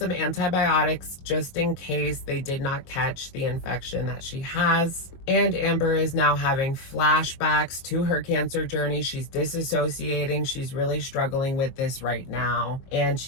antibiotics just in case they did not catch the infection that she has. And Amber is now having flashbacks to her cancer journey. She's disassociating. She's really struggling with this right now. And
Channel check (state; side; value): late; right; 22 ms